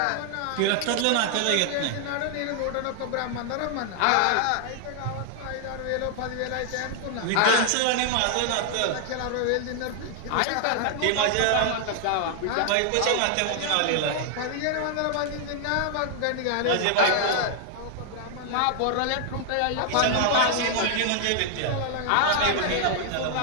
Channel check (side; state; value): both; different; correlation 0.00